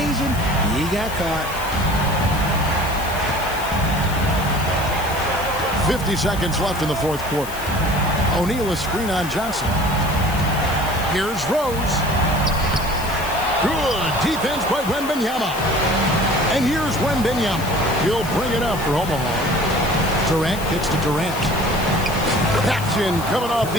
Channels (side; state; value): left; noise; hiss, 13 dB below the sound